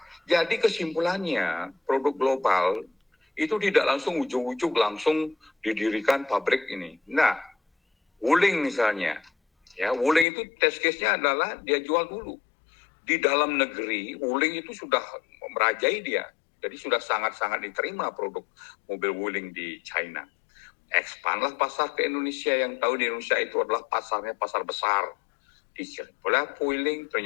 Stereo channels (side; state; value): right; drops out; at 10.2 s